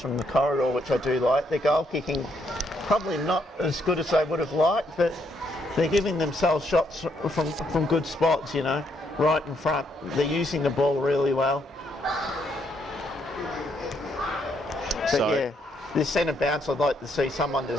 the corridor, which I do like. Their goal kicking probably not as good as they would have liked, but they're giving themselves shots from good spots, you know. right in front. They're using the ball really well. But So, yeah, this centre bounce, I'd like to see someone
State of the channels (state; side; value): normal; both; correlation 0.74